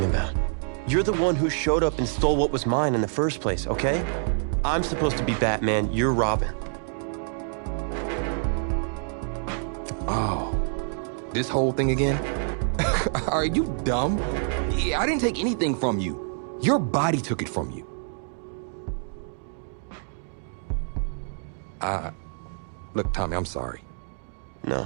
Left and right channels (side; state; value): left; silent; 60 dB below the other